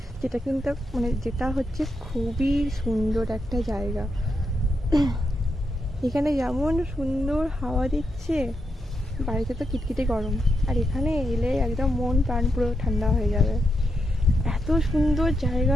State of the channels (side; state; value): both; normal; correlation 0.83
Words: যেটা কিন্তু মানে যেটা হচ্ছে খুবই সুন্দর একটা জায়গা। এখানে যেমন সুন্দর হাওয়া দিচ্ছে, বাড়িতে তো কিটকিটে গরম, আর এখানে এলে একদম মন প্রাণ পুরো ঠান্ডা হয়ে যাবে। এত সুন্দর